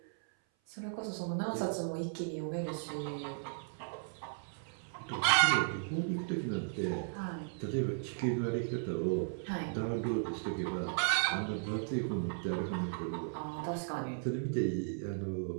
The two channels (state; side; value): silent; left; 54 dB below the other